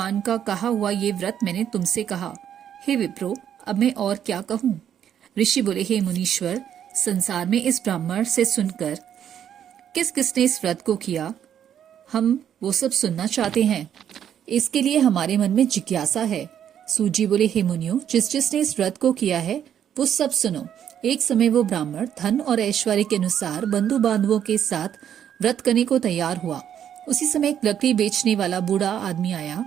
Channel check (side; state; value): left; quieter; 9.5 dB